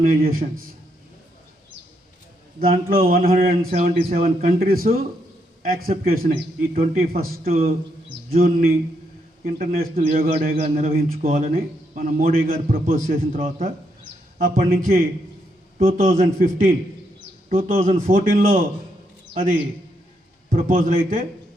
దాంట్లో 177 countries accept చేసినాయి ఈ 21 జూన్ని ఇంటర్నేషనల్ యోగా డేగా నిర్వహించుకోవాలని మన మోడీ గారు ప్రపోజ్ చేసిన తర్వాత అప్పటి నుంచి 2014లో అది ప్రపోజల్ అయితే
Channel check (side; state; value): both; normal; correlation 0.78